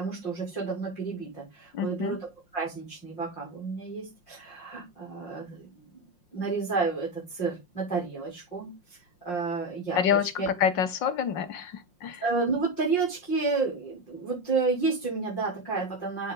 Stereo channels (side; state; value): right; late; 5.6 ms